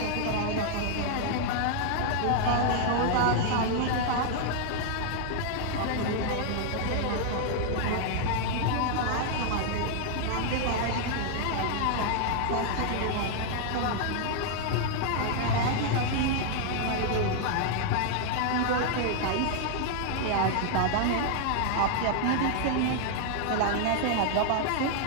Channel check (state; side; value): different; both; correlation 0.00